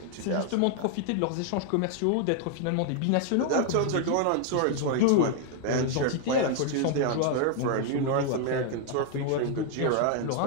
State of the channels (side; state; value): both; different; correlation 0.00